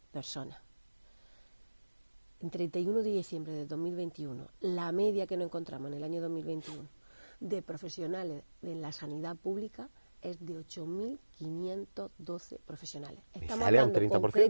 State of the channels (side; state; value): both; inverted; correlation -1.00